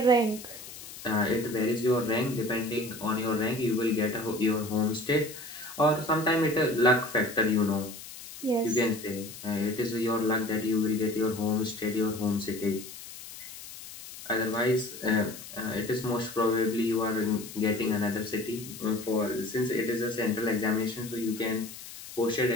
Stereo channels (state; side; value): noise; left; hiss, 14 dB below the sound